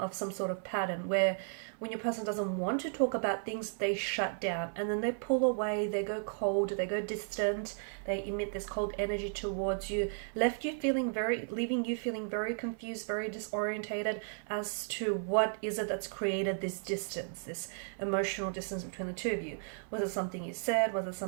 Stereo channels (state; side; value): silent; left; 55 dB below the other